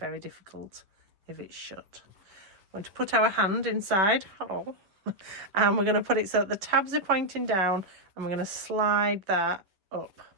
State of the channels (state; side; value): late; left; 11 ms